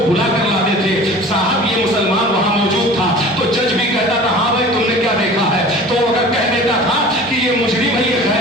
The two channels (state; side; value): normal; both; correlation 0.42